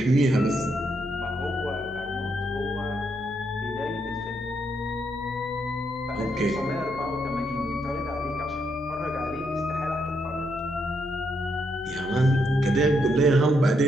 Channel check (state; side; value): normal; both; correlation 0.78